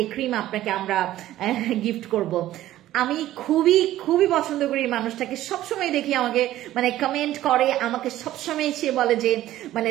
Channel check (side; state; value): left; quieter; 14.2 dB